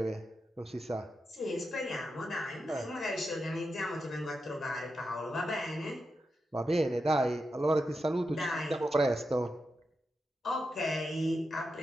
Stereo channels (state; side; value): normal; both; correlation 0.88